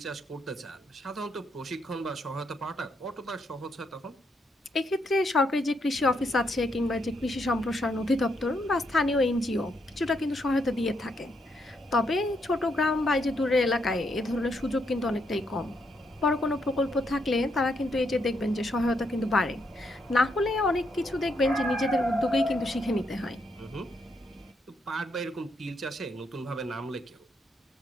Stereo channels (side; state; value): both; normal; correlation 0.77